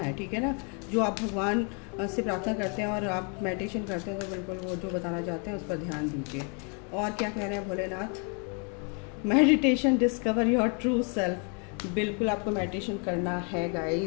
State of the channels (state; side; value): quieter; right; 37.5 dB